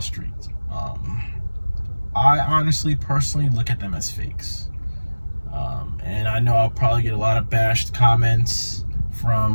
I honestly, personally look at them as fakes. And I know I'll probably get a lot of bashed comments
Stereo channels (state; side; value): inverted; both; correlation -1.00